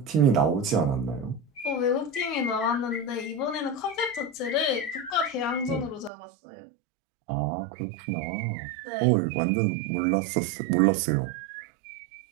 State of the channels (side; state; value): left; drops out; at 6.1 s